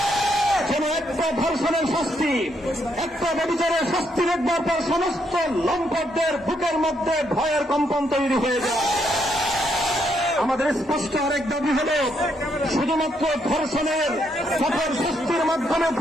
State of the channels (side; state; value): both; normal; correlation 0.75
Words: যেন একটা ধর্ষণের শাস্তি, একটা ব্যভিচারের শাস্তি দেখবার পর সমস্ত লম্পটদের বুকের মধ্যে ভয়ের কম্পন তৈরি হয়ে যায়। আমাদের স্পষ্ট আরেক দাবি হল, শুধুমাত্র ধর্ষণের কঠোর শাস্তির মাধ্যমে